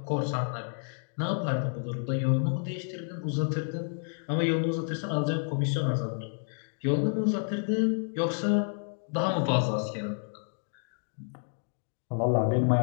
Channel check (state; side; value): silent; right; digital silence